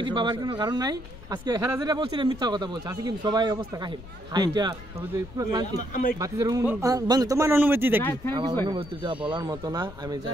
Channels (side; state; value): left; noise; rumble, 16 dB below the sound